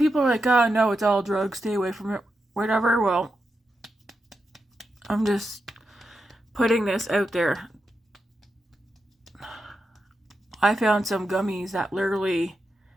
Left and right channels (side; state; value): both; normal; correlation 0.87